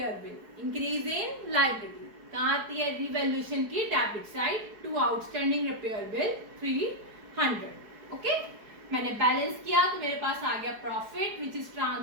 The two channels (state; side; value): late; left; 4.8 ms